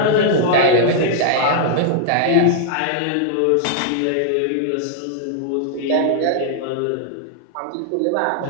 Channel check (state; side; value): different; both; correlation -0.01